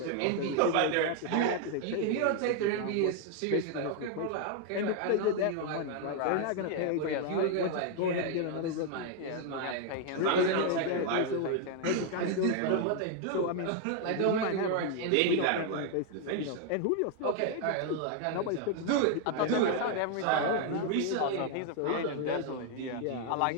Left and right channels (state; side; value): different; both; correlation 0.00